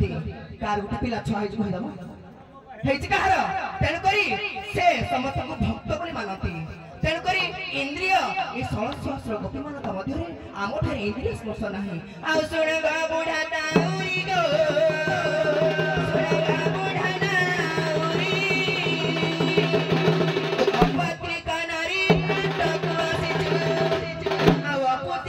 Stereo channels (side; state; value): both; identical; correlation 1.00